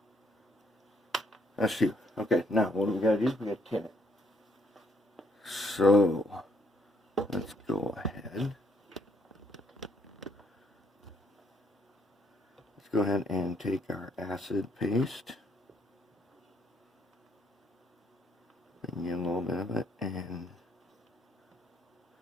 That's two. Okay, now what do we got to do? We got to tin it. So let's go ahead. Let's go ahead and take our acid paste. Bring in a little bit of it and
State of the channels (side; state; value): both; normal; correlation 0.71